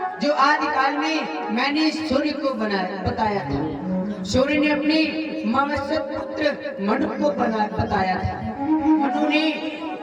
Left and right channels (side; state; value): both; identical; correlation 1.00